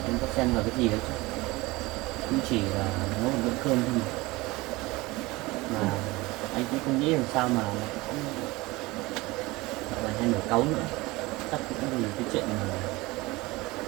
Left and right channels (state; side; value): quieter; left; 21.6 dB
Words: Em có xen vào cái gì đấy chứ? Cũng chỉ là nấu một bữa cơm thôi mà anh cũng không nghĩ làm sao mà lại cũng gọi là hay nổi cáu nữa. Chắc cũng vì cái chuyện mà